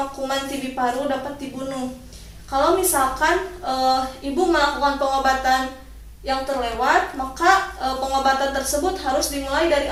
kuman TB paru dapat dibunuh. Kalau misalkan ibu melakukan pengobatan yang terlewat, maka pengobatan tersebut harus dimulai dari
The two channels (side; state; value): both; identical; correlation 1.00